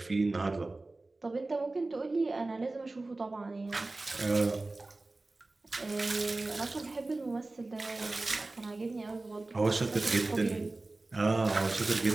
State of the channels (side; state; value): left; quieter; 3.1 dB